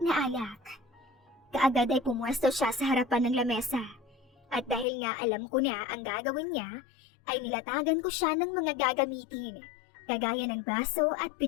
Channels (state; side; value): drops out; right; at 4.9 s